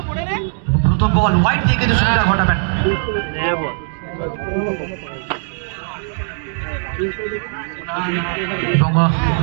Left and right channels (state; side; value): silent; left; 59 dB below the other